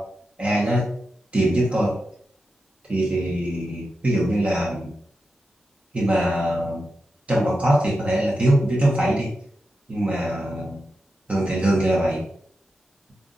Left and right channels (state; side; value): normal; both; correlation 0.89